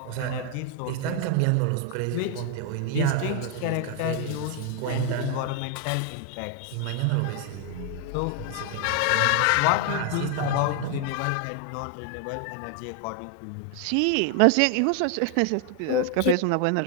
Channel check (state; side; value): different; both; correlation 0.00